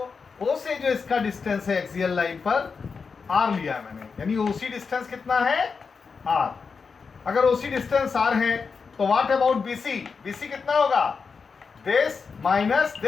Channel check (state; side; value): quieter; right; 5.2 dB